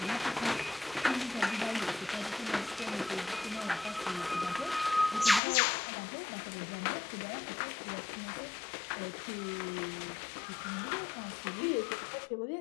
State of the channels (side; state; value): right; drops out; at 5.4 s